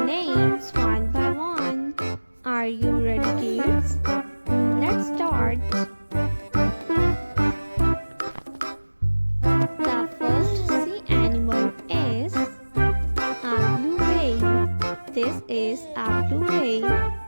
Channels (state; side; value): inverted; both; correlation -1.00